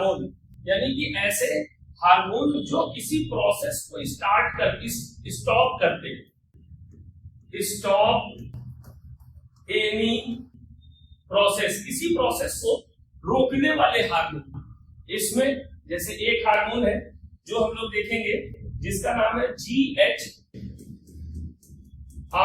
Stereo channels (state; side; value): identical; both; correlation 1.00